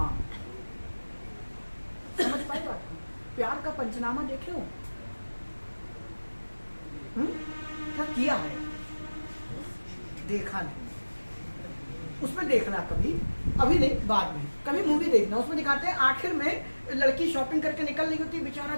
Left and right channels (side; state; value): both; inverted; correlation -1.00